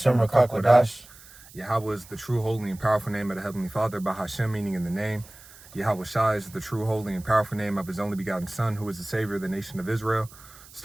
Rakakwadash. Yahweh is the true, holy, and powerful name of the Heavenly Father. Bahashem, meaning in the name. Yahushai is the true, holy, and powerful name of his only begotten Son, who is the Savior of the nation of Israel.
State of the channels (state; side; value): noise; right; hiss, 21 dB below the sound